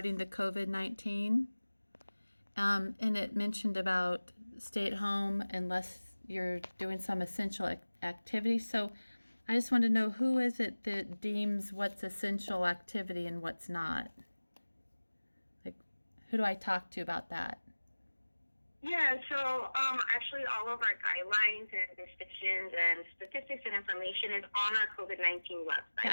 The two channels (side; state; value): both; inverted; correlation -1.00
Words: the COVID-19, and it mentioned about stay at home unless you're doing some essential activity. So I just want to know, who is it that deems what's essential activity and what's not? Like, who do I talk to about that? Yeah, so actually all of our guidelines and restrictions and statistics and information is on our COVID-19 website.